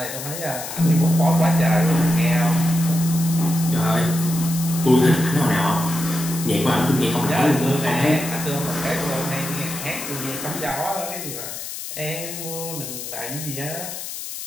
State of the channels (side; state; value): left; noise; hiss, 8 dB below the sound